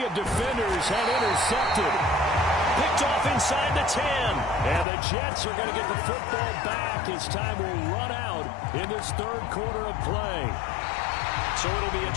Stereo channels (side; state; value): right; drops out; at 4.9 s